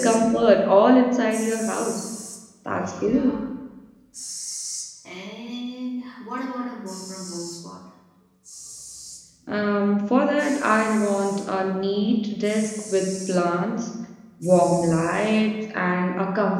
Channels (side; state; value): both; identical; correlation 1.00